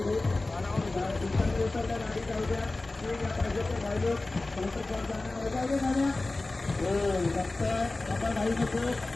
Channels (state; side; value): quieter; right; 3.1 dB